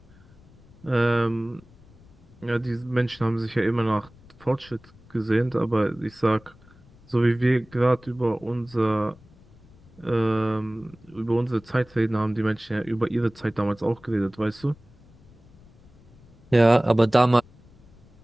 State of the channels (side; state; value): left; noise; rumble, 25 dB below the sound